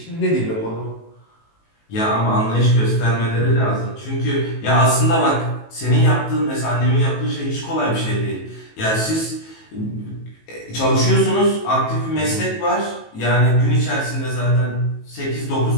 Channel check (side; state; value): right; late; 18 ms